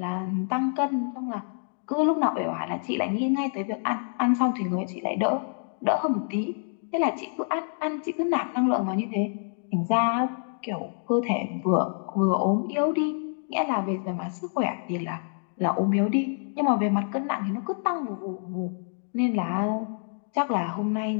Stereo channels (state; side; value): silent; right; digital silence